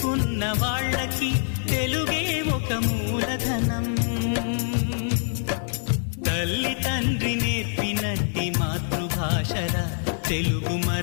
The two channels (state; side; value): silent; right; 62 dB below the other